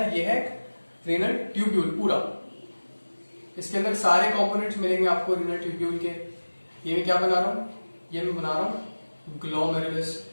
ये है रेनल ट्यूब्यूल पूरा। इसके अंदर सारे कंपोनेंट्स मिलेंगे आपको रीनल ट्यूब्यूल के। ये मैं क्या बना रहा हूं, ये मैं बना रहा हूं ग्लोमेरुलस।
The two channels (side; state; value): both; inverted; correlation -1.00